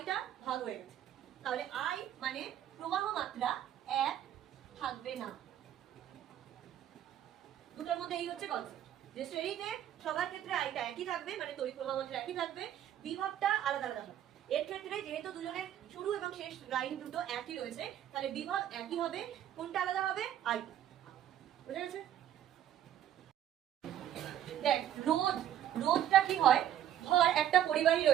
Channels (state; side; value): quieter; left; 11.0 dB